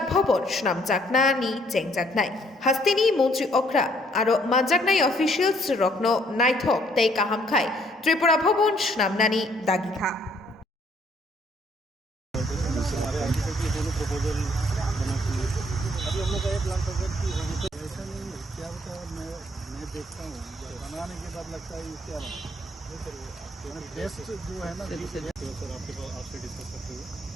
ভবন শ্রামচাকনা নি চেংজাকনাই হাস্তিনি মন্ত্রী অগ্রা আর মানজাকনাই অফিসিয়ালস রত্ন নাইথক তাই কাহামখাই ত্রিপুরা ভবন শ্রামনানি দাগিখা अभी हम लोग का ये प्लान था सर कि ऐसा नहीं है क्या होता है मैं देखता हूँ बनाने के बाद लगता है ये क्या बना बेस्ट जो है ना सर आपके पास आपसे डिस्कस करते हुए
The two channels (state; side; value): normal; both; correlation 0.65